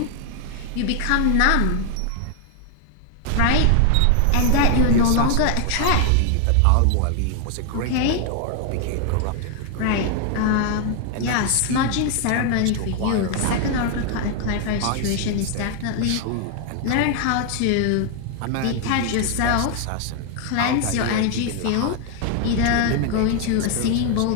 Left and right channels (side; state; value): both; different; correlation 0.00